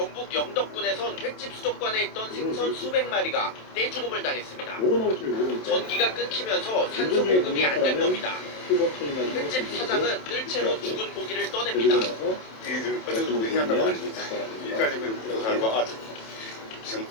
영덕군에선 횟집 수족관에 있던 생선 수백 마리가 떼죽음을 당했습니다. 전기가 끊기면서 산소 공급이 안 된 겁니다. 횟집 사장은 뜰채로 죽은 고기를 떠냅니다. 어떤 고기 한다고 아닙니다. 여기까지 그 결과 지금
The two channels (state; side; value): late; right; 27 ms